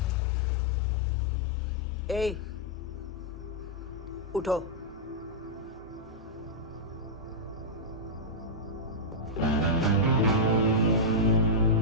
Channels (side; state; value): both; normal; correlation -0.08